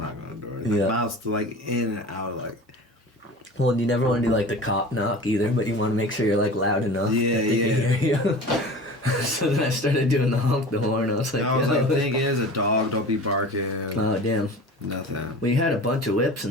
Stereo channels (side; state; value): both; normal; correlation 0.37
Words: on the door. Like, mouth's like in and out. Like. Well, you never want to do like the cop knock either, but you want to make sure you're like loud enough that they can hear you. So then I started doing the honk the horn. I was like, the thing is, a dog don't be barking. Oh damn. Nothing. We had a bunch of whips